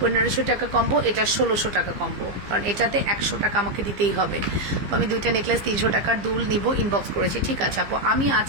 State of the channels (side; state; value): left; late; 15 ms